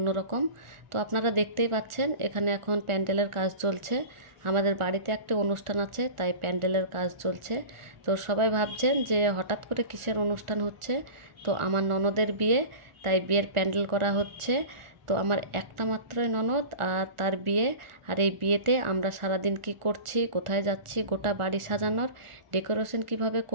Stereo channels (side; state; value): left; late; 1.4 ms